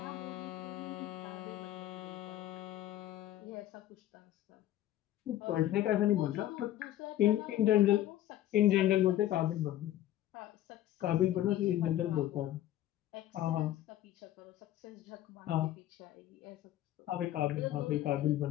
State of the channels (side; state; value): right; quieter; 13.3 dB